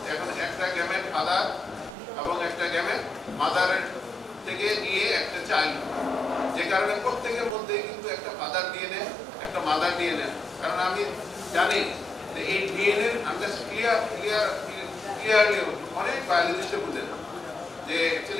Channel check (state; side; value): quieter; right; 3.1 dB